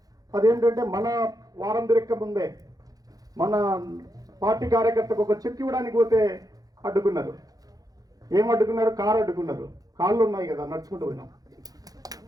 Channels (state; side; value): late; left; 0.18 ms